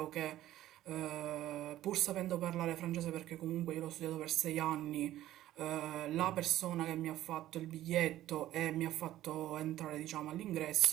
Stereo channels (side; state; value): left; quieter; 13.9 dB